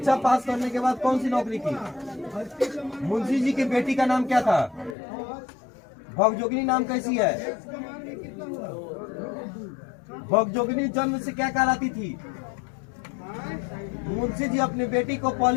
पास करने के बाद कौन सी नौकरी की? मुंशी जी की बेटी का नाम क्या था? भगजोगिनी नाम कैसी है? भगजोगिनी जन्म से क्या कहलाती थी? मुंशी जी अपनी बेटी को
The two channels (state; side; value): drops out; right; at 5.0 s